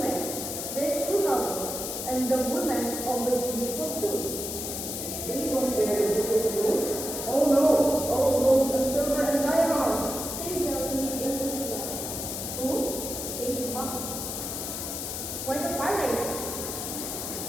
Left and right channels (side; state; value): left; noise; hiss, 5 dB below the sound